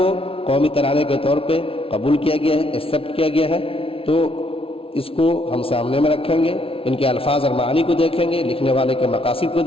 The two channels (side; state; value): right; late; 0.26 ms